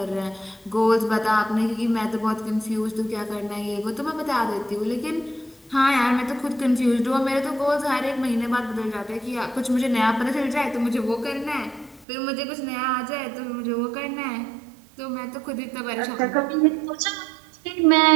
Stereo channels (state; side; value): drops out; left; at 12.1 s